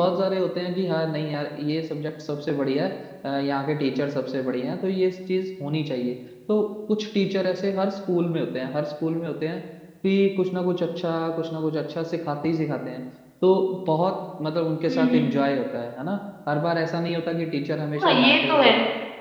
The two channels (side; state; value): both; identical; correlation 1.00